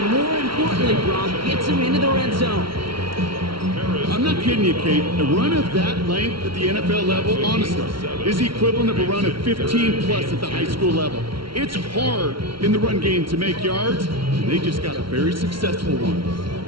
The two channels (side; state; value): left; late; 0.74 ms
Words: more importantly, Brock gets him into the red zone. I'm not kidding you, Kate. A run of that length at the NFL level, honestly, is the equivalent of a run of 15-plus at the high school level. It's hard in the run game to make yards, and they just got a very successful one.